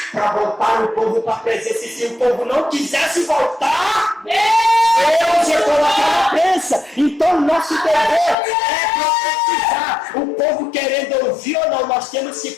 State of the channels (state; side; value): drops out; right; at 8.3 s